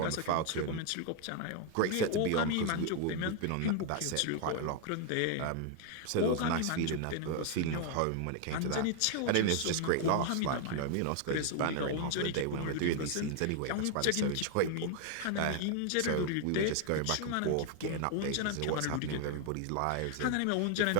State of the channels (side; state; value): both; different; correlation 0.00